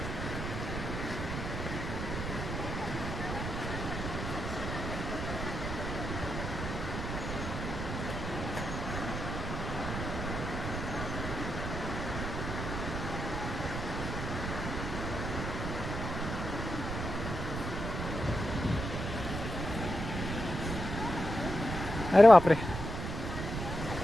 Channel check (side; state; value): right; noise; rumble, 4 dB below the sound